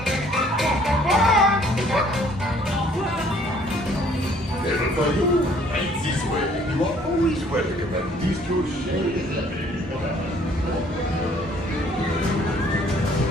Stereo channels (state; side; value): normal; both; correlation 0.59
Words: Never find you. Right this way. You are always welcome at this Kuche.